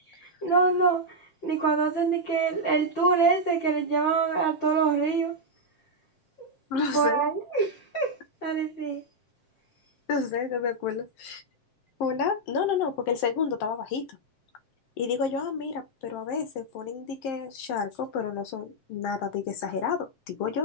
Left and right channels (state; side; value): late; right; 7.6 ms